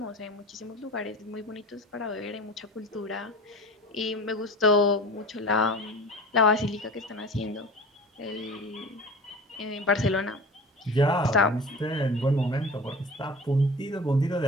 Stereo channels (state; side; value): normal; both; correlation 0.37